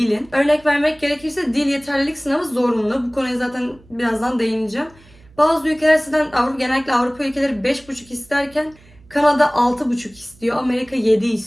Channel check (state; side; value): noise; right; hum, 27 dB below the sound